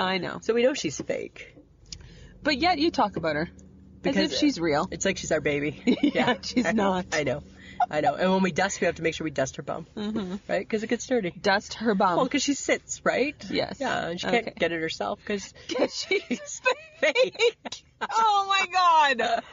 know. So we know she's fake. But yet you talk about her. Because as if she's real. It's like she's our baby. Yeah, she's not. I know. And when we dust, we have to make sure we dust her bum. Mm-hmm. Right? Because it gets dirty. Dust her bum. Well, because she sits, right? Yes. Yeah, and she can't get it herself because she's fake. Oh my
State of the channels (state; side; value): identical; both; correlation 1.00